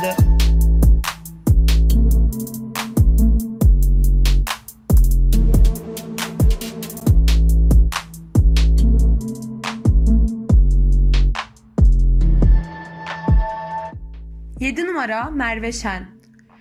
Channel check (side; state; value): both; identical; correlation 1.00